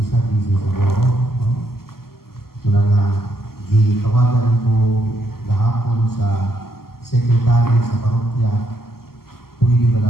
busy siguro. No? Muna nga, gitawagan ko gahapon sa sekretary sa parokya, pwede ba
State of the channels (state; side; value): late; right; 0.93 ms